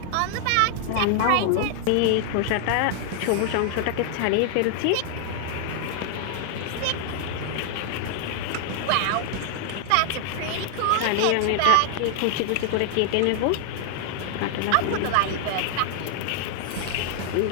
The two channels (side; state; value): both; different; correlation 0.00